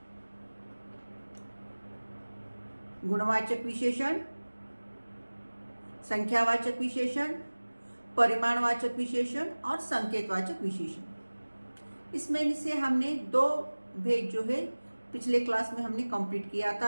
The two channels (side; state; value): both; inverted; correlation -1.00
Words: गुणवाचक विशेषण, संख्यावाचक विशेषण, परिमाणवाचक विशेषण और संकेतवाचक विशेषण। इसमें से हमने 2 भेद जो है पिछले क्लास में हमने कंप्लीट किया